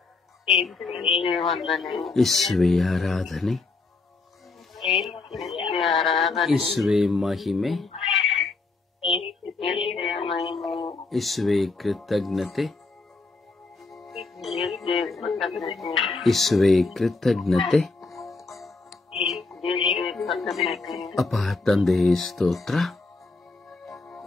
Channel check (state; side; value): quieter; right; 3.8 dB